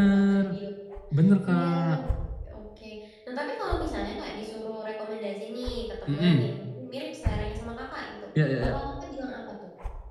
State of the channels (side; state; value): both; identical; correlation 1.00